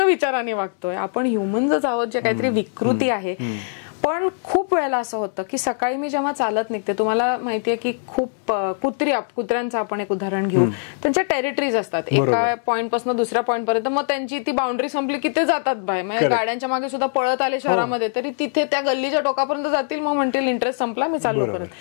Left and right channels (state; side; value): silent; right; 64 dB below the other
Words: वागतोय. आपण ह्युमन्सच आहोत जे काहीतरी विकृती आहे. पण खूप वेळेला असं होतं की सकाळी मी जेव्हा चालत निघते, तुम्हाला माहितीये की खूप कुत्र्यांचं आपण एक उदाहरण घेऊ, त्यांच्या टेरिटरीज असतात, एका पॉइंट पासून दुसऱ्या पॉइंट पर्यंत, मग त्यांची ती बाउंड्री संपली की ते जातात बाहेर. म्हणजे गाड्यांच्या मागे सुद्धा पळत आले शहरामध्ये तरी तिथे त्या गल्लीच्या टोकापर्यंत जातील, मग म्हणतील इंटरेस्ट संपला, मी चाललो